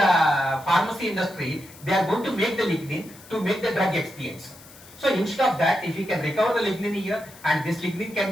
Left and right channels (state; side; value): noise; left; hiss, 21 dB below the sound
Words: pharmacy industry, they are going to make the lignin to make the drug expiates. So instead of that, if we can recover the lignin here and this lignin can